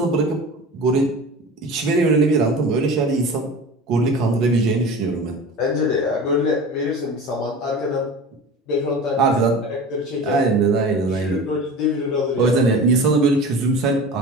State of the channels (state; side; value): normal; both; correlation 0.35